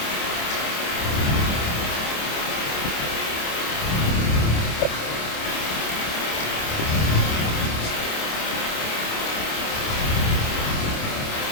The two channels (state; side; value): late; right; 27 ms